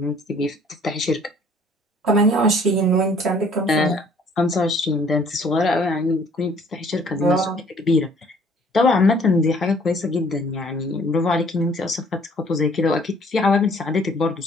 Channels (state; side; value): normal; both; correlation 0.57